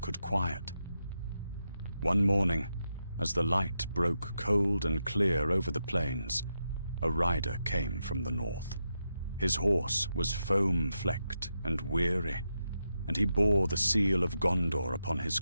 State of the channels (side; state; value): both; inverted; correlation -0.86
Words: could quiet. One morning, as the light broke cold and clear over the plains, a rider came from the north. His horse was foam-flecked and weary, and he bore the seal of Gondor upon his